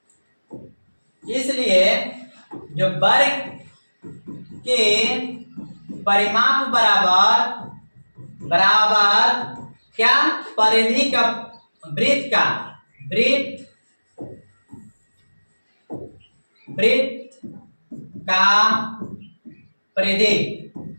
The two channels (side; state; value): both; inverted; correlation -1.00